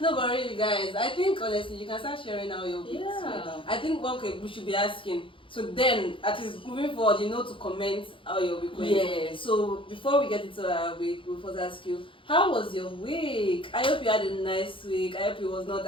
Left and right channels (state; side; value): late; right; 0.25 ms